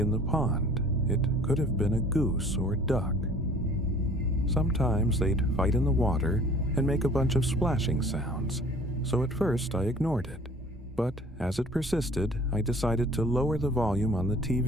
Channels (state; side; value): normal; both; correlation 0.50